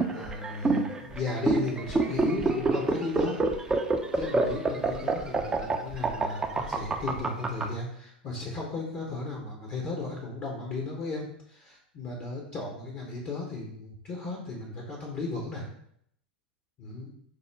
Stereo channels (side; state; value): both; normal; correlation 0.56